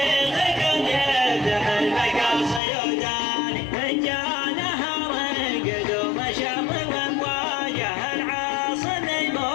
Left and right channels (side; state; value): right; drops out; at 2.6 s